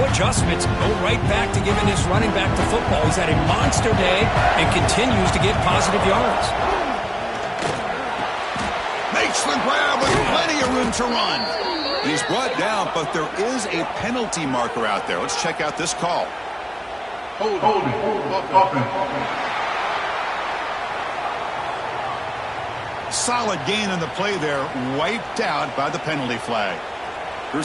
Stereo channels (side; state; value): both; identical; correlation 1.00